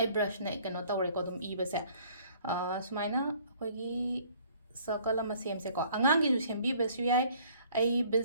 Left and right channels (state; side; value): inverted; both; correlation -0.57